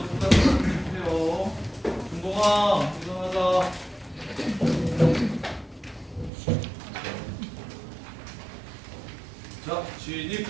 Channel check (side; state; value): left; drops out; at 6.3 s